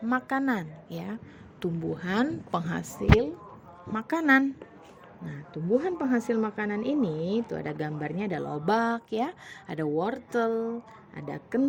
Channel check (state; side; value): identical; both; correlation 1.00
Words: makanan ya. Tumbuhan penghasil makanan. Nah, tumbuhan penghasil makanan ini itu ada gambarnya, ada lobak ya, ada wortel, ada